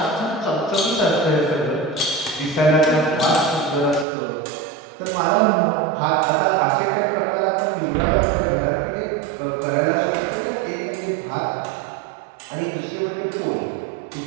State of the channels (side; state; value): left; drops out; at 4.0 s